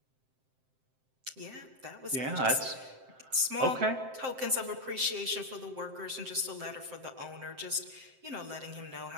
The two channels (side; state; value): left; late; 7.7 ms